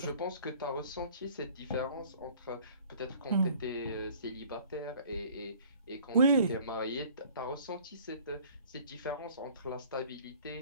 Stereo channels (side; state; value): both; inverted; correlation -0.52